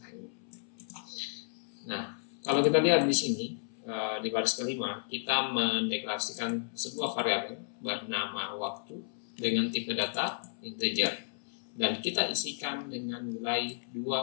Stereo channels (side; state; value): right; silent; 56 dB below the other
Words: ini. Nah, kalau kita lihat di sini di baris kelima, kita mendeklarasikan sebuah variabel bernama waktu dengan tipe data integer dan kita isikan dengan nilai